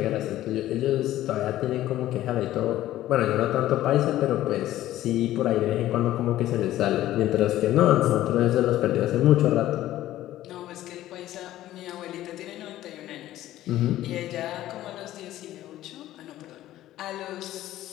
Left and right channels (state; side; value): quieter; right; 14.2 dB